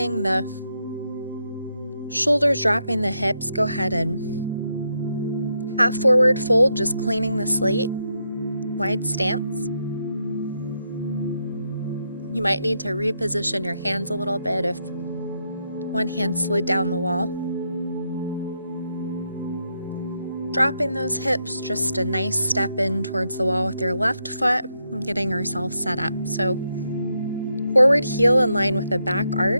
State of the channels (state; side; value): inverted; both; correlation -0.81